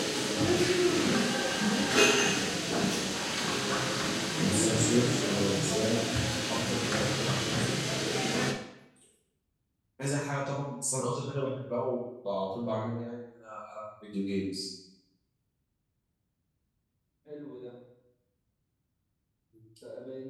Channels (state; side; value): identical; both; correlation 1.00